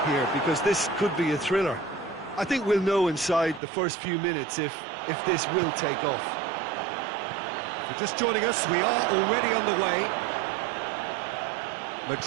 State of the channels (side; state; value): left; drops out; at 3.6 s